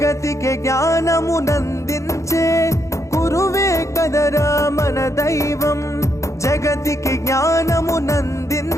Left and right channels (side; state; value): right; late; 0.15 ms